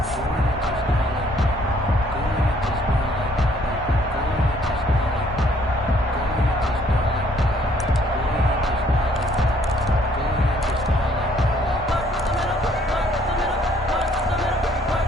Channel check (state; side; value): normal; both; correlation 0.63